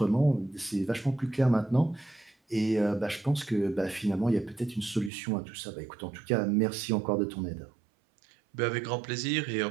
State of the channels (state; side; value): drops out; left; at 5.1 s